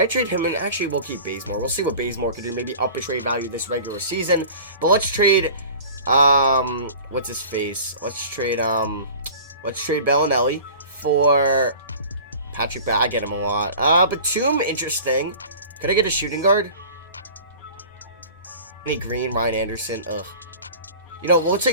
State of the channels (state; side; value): inverted; both; correlation -0.41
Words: trade him? And actually, we'll keep Bazemore. We'll see what Bazemore could do. Maybe up his trade value this regular season. But let's trade, what's his face? Let's trade Bellinelli for Patrick. I get him a lot. Batum, interesting. Could I get a shooting guard? Any Green, Ryan Anderson. Ugh. You know, we'll